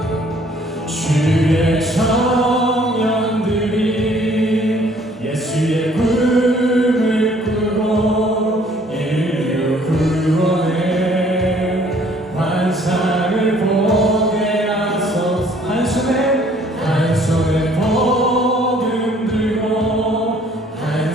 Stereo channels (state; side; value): normal; both; correlation 0.59